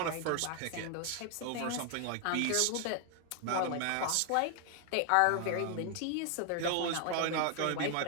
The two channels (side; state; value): both; different; correlation 0.00